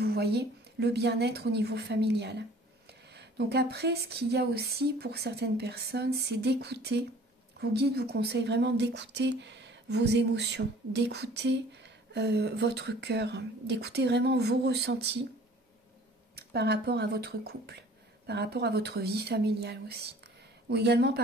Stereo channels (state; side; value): normal; both; correlation 0.51